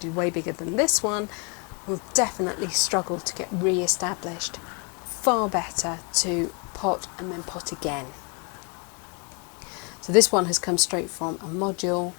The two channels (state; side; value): quieter; right; 35.1 dB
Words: is way bigger than this one will definitely struggle to get re-established. Far better to pot and then pot again. So this one has come straight from a module